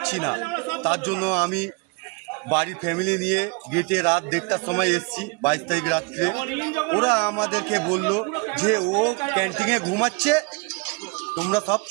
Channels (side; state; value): left; quieter; 29.7 dB